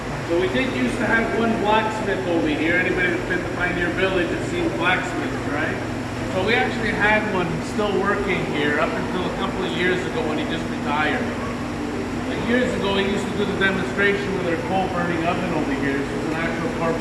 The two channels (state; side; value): identical; both; correlation 1.00